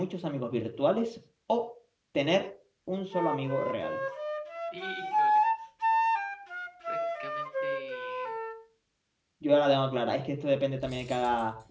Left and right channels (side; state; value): both; identical; correlation 1.00